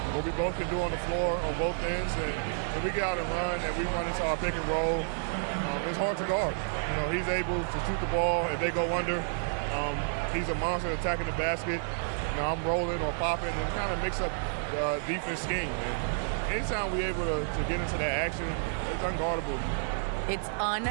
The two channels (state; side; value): silent; left; digital silence